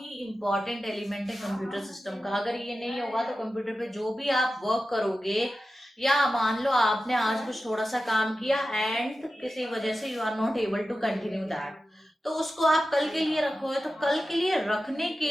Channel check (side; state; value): both; normal; correlation 0.93